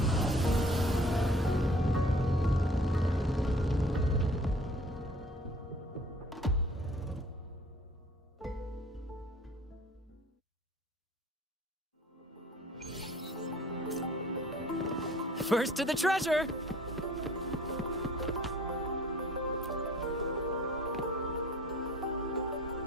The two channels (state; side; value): normal; both; correlation 0.52